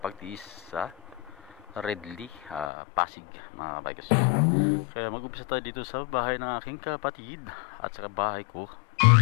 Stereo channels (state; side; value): drops out; right; at 2.7 s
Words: sa Redley, Pasig mga bikers. Kaya mag-umpisa tayo dito sa bahay ng aking kapatid at saka bahay ko.